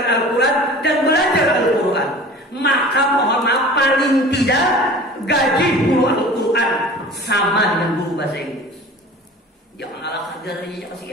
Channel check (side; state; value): both; normal; correlation 0.41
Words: Al-Quran dan belajar Al-Quran. Maka mohon maaf, paling tidak gaji guru Al-Quran sama dengan guru bahasa Inggris. Jangan ala kadarnya,